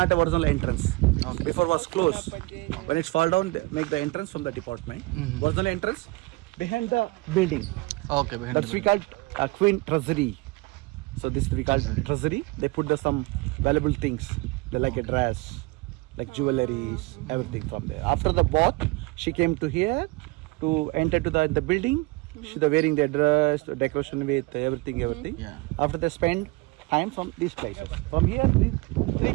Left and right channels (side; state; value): left; quieter; 24.1 dB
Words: a original entrance. Okay. Before was closed. When it's fall down, they make the entrance from the department. Original entrance behind the building. Okay. Behind That's we called Queen Treasury. So this we called treasury. They put some valuable things. They like a dress, like jewelries, everything from there. After the bath, she came to here to enter to the building. She the wearing their dress, the decoration with everything. Yeah. After they spend time from these places. From here, three